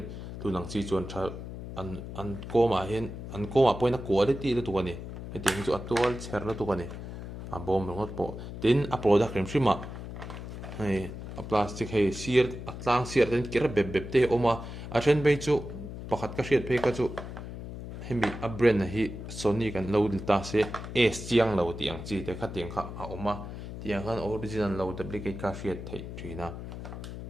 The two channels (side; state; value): left; noise; hum, 9 dB below the sound